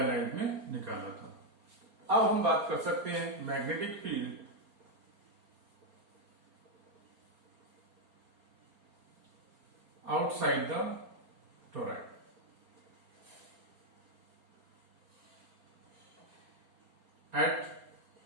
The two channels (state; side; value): late; left; 4.3 ms